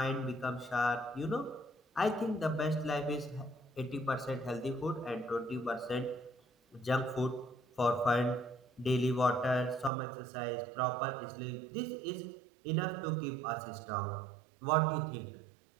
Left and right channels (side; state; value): left; drops out; at 9.9 s